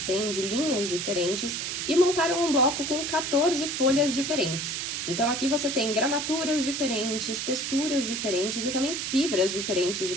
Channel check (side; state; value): right; noise; hiss, 3 dB below the sound